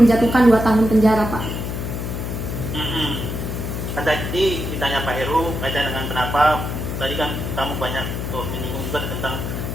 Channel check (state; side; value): noise; left; hum, 4 dB below the sound